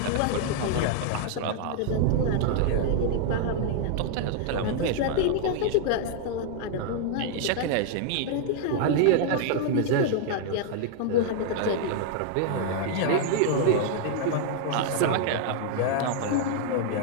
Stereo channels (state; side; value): different; both; correlation 0.00